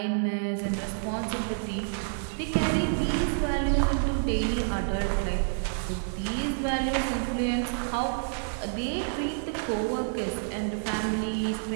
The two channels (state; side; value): silent; left; digital silence